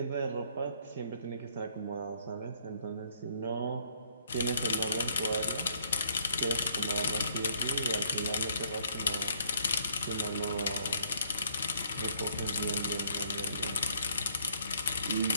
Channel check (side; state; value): both; inverted; correlation -0.66